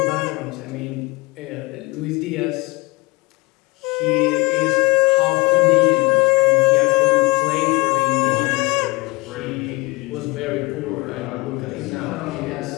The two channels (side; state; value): right; quieter; 25.8 dB